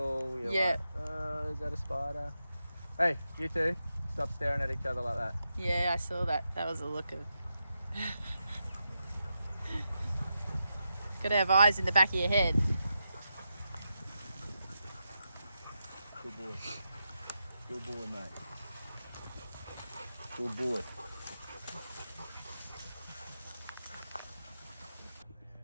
you're like, oh, is that a spider? Hey, you two, stop staring at each other like that. Yeah, I saw that. That was a look of... Got to have eyes in the back of your head. Good boy. Good boy, mate. Good boy.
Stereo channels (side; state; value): both; inverted; correlation -0.87